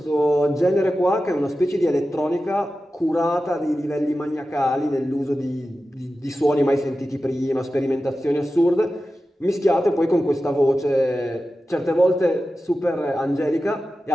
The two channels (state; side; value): normal; both; correlation 0.93